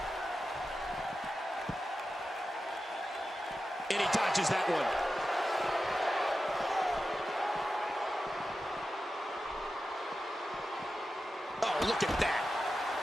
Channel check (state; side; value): normal; both; correlation 0.92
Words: And he dodges that one. Oh, look at that.